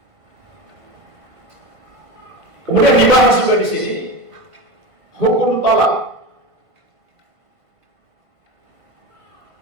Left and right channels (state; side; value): late; left; 1.5 ms